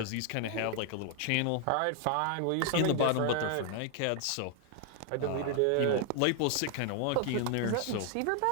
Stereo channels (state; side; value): different; both; correlation 0.00